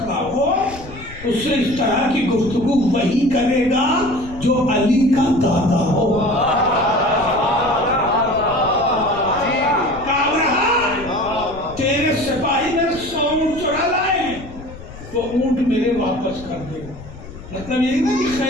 ہو اس سے اس طرح کی گفتگو وہی کرے گا جو علی کا دادا ہو. تیرے سپاہی میں 100 اونٹ چرا لائے ہیں, وہ اونٹ میرے واپس کر دے. مطلب یہی نا کہ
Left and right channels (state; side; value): noise; left; rumble, 16 dB below the sound